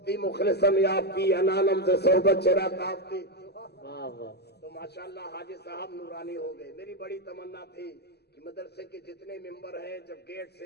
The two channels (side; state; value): right; late; 0.48 ms